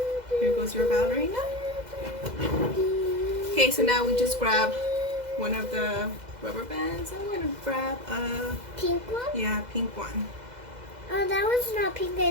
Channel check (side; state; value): left; late; 2.0 ms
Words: Here goes your ballerina. Okay, so now we just grab one of the rubber bands. I'm going to grab a pink one? pink one. Oh, that one's not pink.